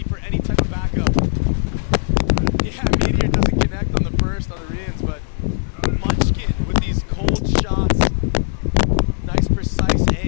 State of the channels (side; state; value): right; silent; digital silence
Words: for any type of backup. Yeah, Meteor doesn't connect on the first on the Rians, but Munchkin with these cold shots. Nice precise